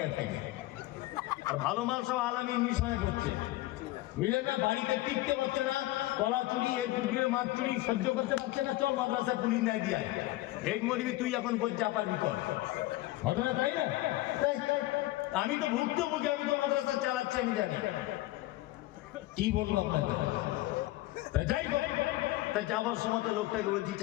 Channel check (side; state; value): right; quieter; 17.6 dB